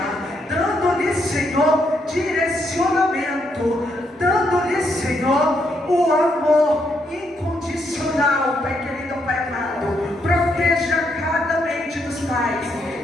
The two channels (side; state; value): both; normal; correlation 0.77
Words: dando-lhe, Senhor, direcionamento, dando-lhe, Senhor, o amor incondicional. Pai querido, Pai amado, proteja cada mente dos pais,